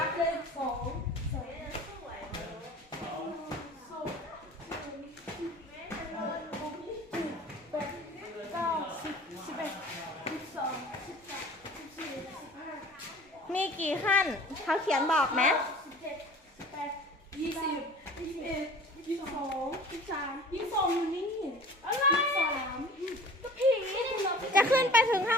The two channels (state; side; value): normal; both; correlation 0.44